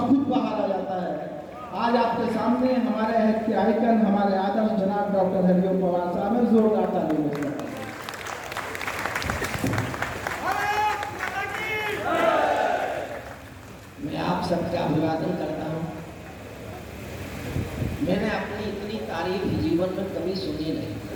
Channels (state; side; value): identical; both; correlation 1.00